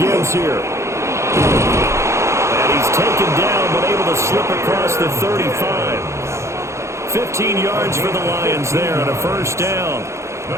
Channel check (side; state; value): left; late; 0.14 ms